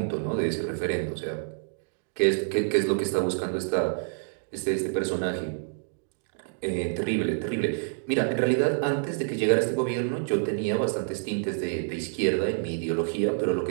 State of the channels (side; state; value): left; silent; digital silence